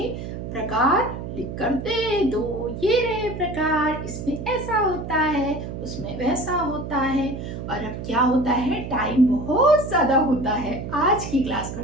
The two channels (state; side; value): noise; right; hum, 7 dB below the sound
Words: प्रकार लिख कर दे दो। ये रहे प्रकार, इसमें ऐसा होता है, उसमें वैसा होता है। और अब क्या होता है, टाइम बहुत ज्यादा होता है, आज की क्लास